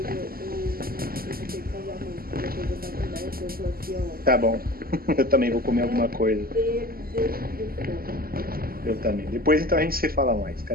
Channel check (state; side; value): late; left; 0.43 ms